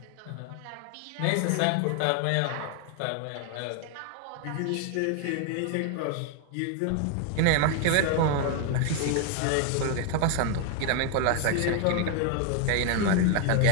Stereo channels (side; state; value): both; different; correlation 0.01